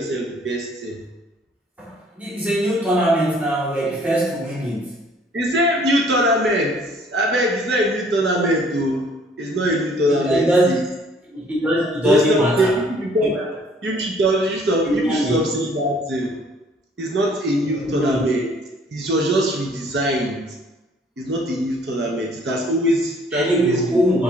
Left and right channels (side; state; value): both; normal; correlation 0.58